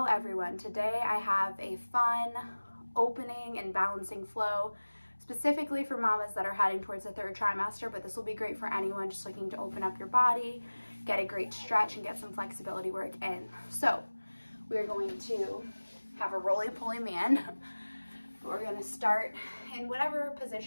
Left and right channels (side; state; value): both; inverted; correlation -1.00